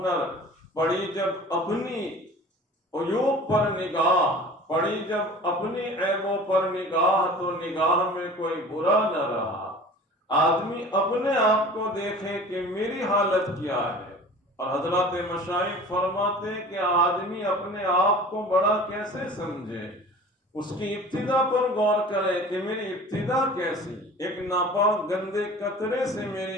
پڑی جب اپنی عیوب پر نگاہ، پڑی جب اپنی عیبوں پر نگاہ تو نگاہ میں کوئی برا نہ رہا۔ آدمی اپنے آپ کو دیکھے کہ میری حالت کیا ہے، اور حضرات مشائخ فرماتے کہ آدمی اپنے آپ کو بڑا کیسے سمجھے، اس کی ابتدا پر غور کرے کہ میری ابتدا کیسی، ایک ناپاک گندے قطرے سے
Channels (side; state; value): both; normal; correlation 0.41